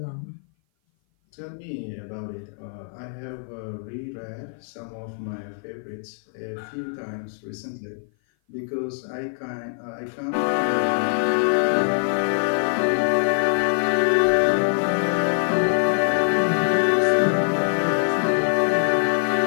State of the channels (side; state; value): right; silent; 56 dB below the other